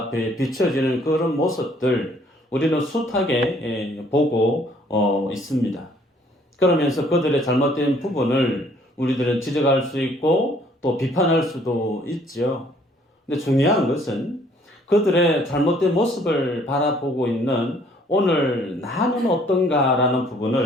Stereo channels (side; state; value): both; normal; correlation 0.61